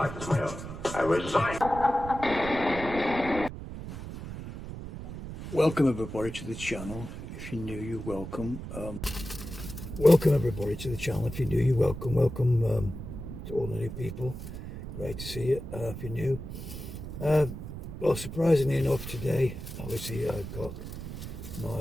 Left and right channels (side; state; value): right; noise; rumble, 9 dB below the sound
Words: is my own. I resign. Welcome everybody to the channel. If you're new, you're welcome. Welcome everybody to the channel. If you're new, you're welcome. Welcome to all the new people. Great to see you. If you're new, well, surprisingly enough, today, obviously, I've got